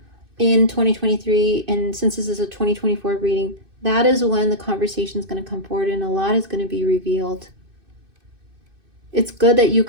in 2023, and since this is a 2024 reading, that is when the conversation is going to come forward and a lot is going to be revealed. It's good that you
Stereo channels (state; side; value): late; left; 2.6 ms